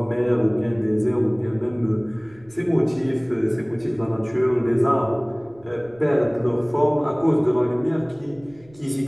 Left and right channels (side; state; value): right; noise; rumble, 27 dB below the sound